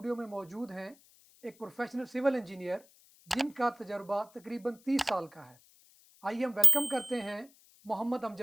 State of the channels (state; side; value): noise; left; hiss, 27 dB below the sound